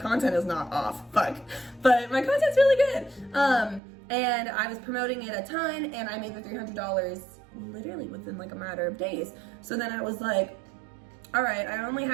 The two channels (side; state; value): left; drops out; at 3.8 s